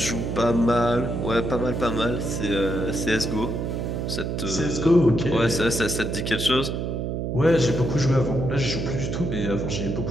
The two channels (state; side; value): noise; right; hum, 2 dB below the sound